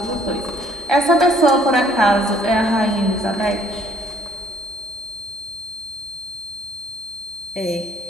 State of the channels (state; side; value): normal; both; correlation 0.62